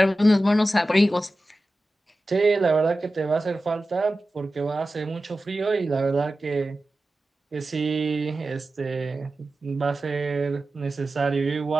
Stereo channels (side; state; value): both; normal; correlation 0.94